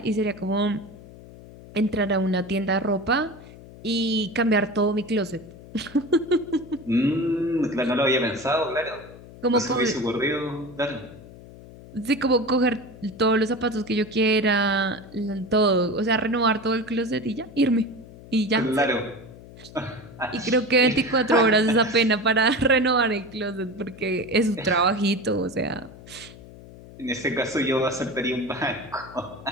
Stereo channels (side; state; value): left; noise; hum, 18 dB below the sound